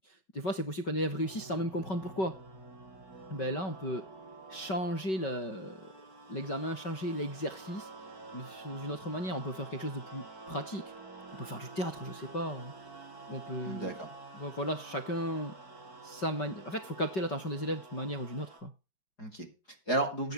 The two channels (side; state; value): right; late; 5.3 ms